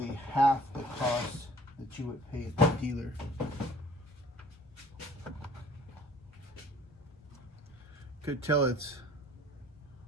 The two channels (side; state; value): both; normal; correlation 0.51